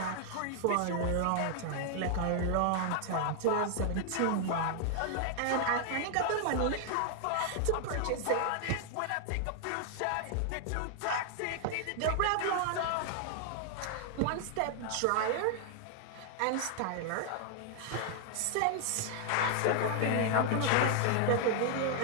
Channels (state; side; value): different; both; correlation 0.00